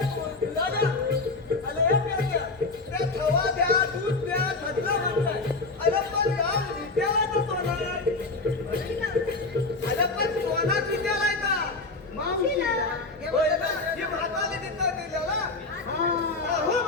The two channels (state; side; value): quieter; right; 3.5 dB